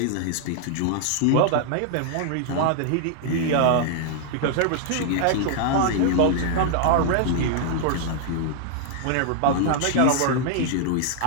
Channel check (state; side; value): different; both; correlation 0.00